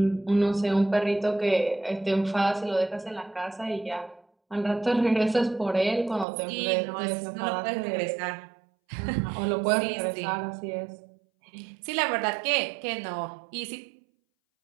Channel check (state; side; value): drops out; left; at 6.2 s